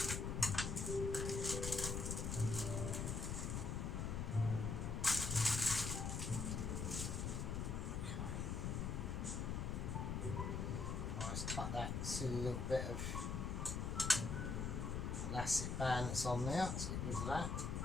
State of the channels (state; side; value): noise; left; rumble, 1 dB below the sound